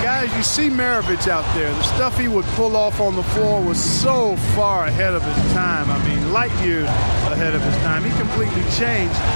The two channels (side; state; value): both; inverted; correlation -1.00